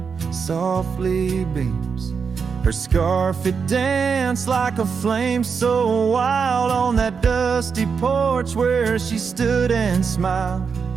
softly beams. Her scarf, it danced like a flame so wild on that dusty porch where she stood and smiled.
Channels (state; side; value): quieter; left; 5.9 dB